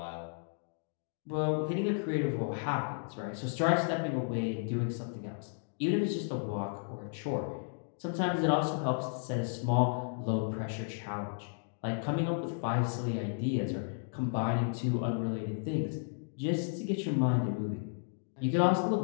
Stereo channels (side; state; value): right; silent; digital silence